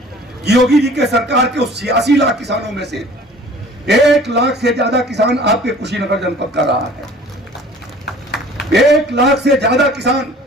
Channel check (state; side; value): normal; both; correlation 0.48